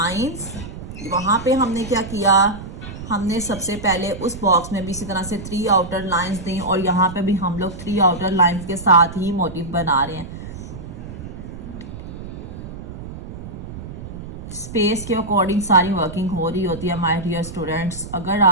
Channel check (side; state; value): right; noise; rumble, 11 dB below the sound